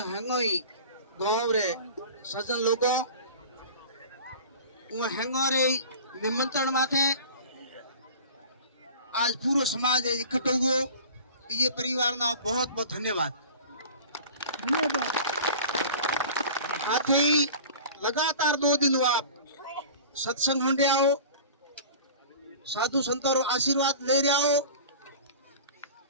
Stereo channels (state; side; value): inverted; both; correlation -0.39